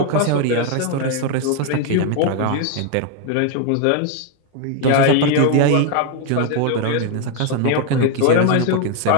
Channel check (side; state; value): both; different; correlation 0.00